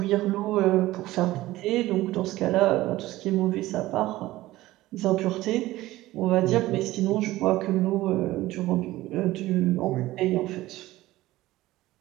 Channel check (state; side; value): quieter; left; 17.0 dB